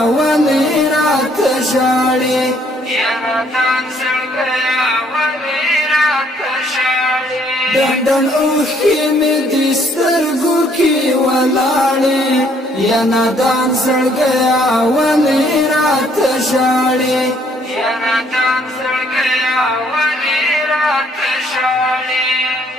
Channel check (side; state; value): both; normal; correlation 0.65